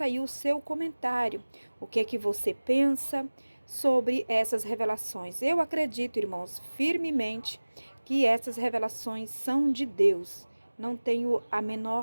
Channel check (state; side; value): inverted; both; correlation -1.00